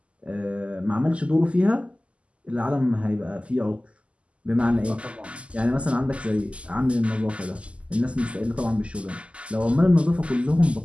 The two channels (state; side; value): late; left; 0.058 ms